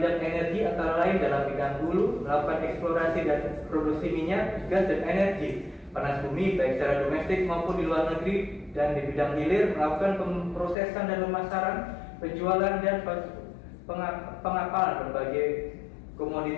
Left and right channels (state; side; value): drops out; right; at 10.8 s